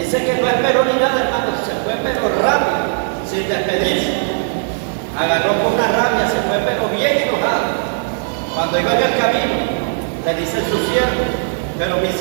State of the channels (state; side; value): silent; left; digital silence